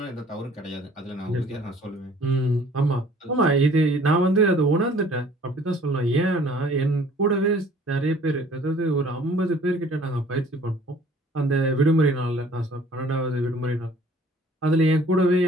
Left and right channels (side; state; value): both; normal; correlation 0.54